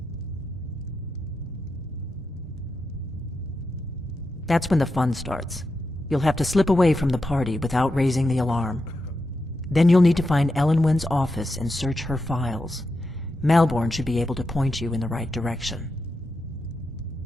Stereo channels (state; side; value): normal; both; correlation 0.87